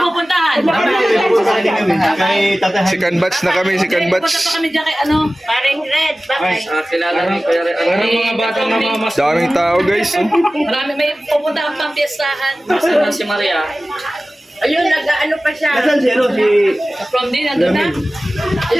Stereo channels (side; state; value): both; normal; correlation 0.97